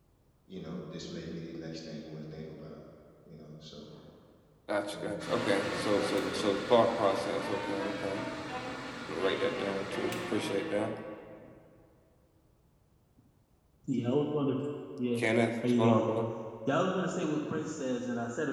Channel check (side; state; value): both; identical; correlation 1.00